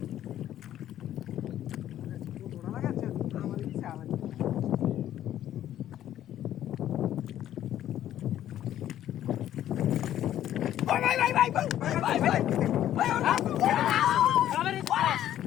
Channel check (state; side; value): quieter; right; 11.8 dB